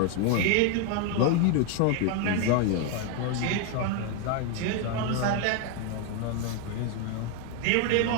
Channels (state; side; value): different; both; correlation 0.01